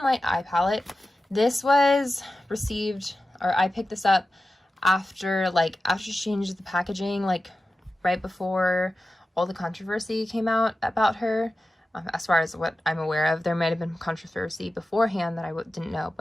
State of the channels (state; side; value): normal; both; correlation 0.94